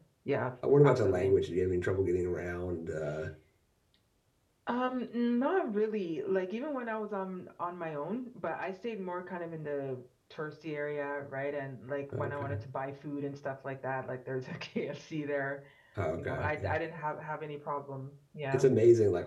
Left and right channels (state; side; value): identical; both; correlation 1.00